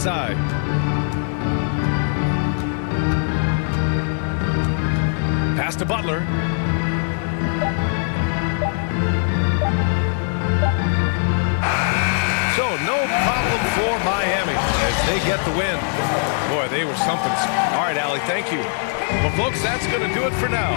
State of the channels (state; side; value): silent; right; 55 dB below the other